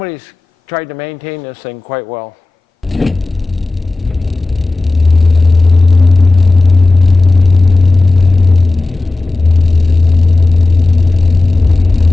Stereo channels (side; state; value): right; quieter; 3.3 dB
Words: tried to maintain this thing quite well.